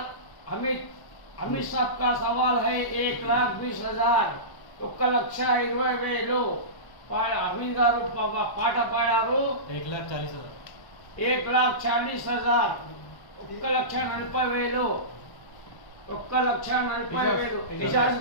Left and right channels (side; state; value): right; late; 1.1 ms